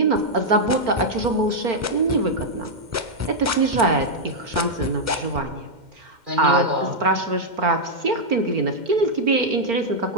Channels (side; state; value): left; late; 2.1 ms